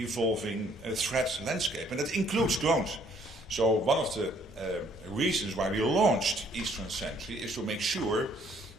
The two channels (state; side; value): noise; right; rumble, 28 dB below the sound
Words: threat landscape, and that includes drones. So one of the reasons why we launched Eastern Sentry is to make sure